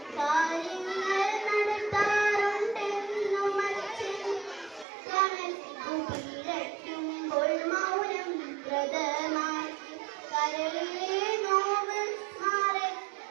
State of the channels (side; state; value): left; drops out; at 4.9 s